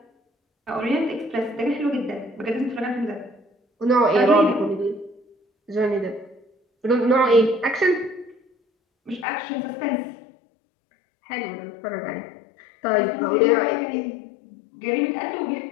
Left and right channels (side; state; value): right; drops out; at 9.2 s